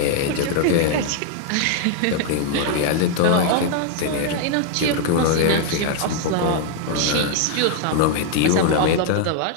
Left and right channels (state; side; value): different; both; correlation 0.00